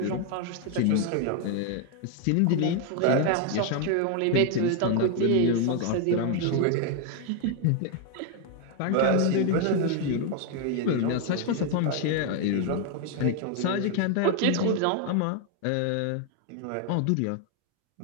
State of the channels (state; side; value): different; both; correlation 0.00